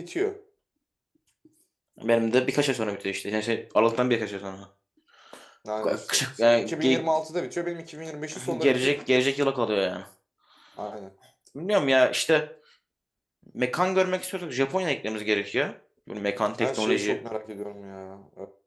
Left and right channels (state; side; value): identical; both; correlation 1.00